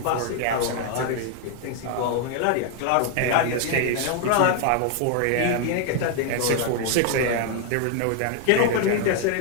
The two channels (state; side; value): different; both; correlation 0.00